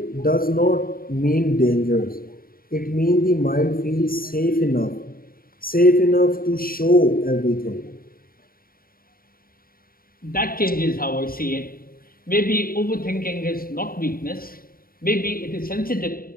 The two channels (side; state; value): right; late; 0.42 ms